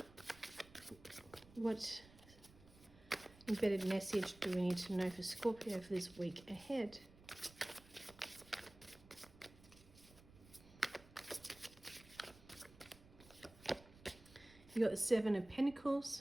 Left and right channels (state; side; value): noise; right; rumble, 22 dB below the sound